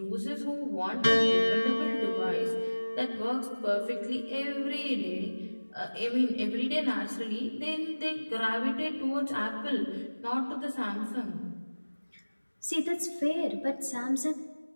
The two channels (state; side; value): inverted; both; correlation -1.00